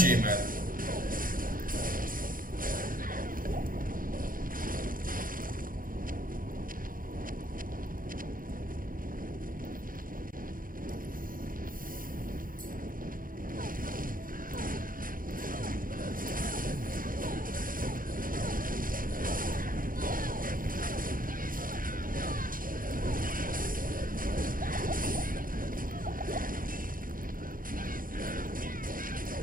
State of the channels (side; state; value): left; late; 0.40 ms